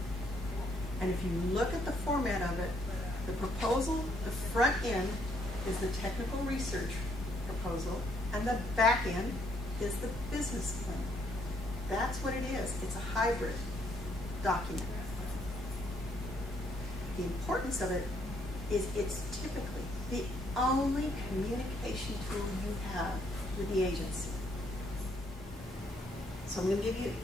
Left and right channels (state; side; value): normal; both; correlation 0.70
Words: And if you look at the format of it, the proposal, the front end is the technical research proposal, and the back end is the business plan. That's what it is. It's a hybrid document. The importance of it is it's typically the only communication tool you have with the agency. So I'm going to give you